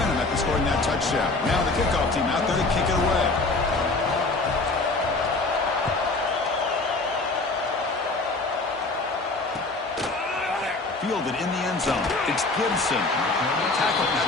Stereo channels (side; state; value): right; quieter; 3.3 dB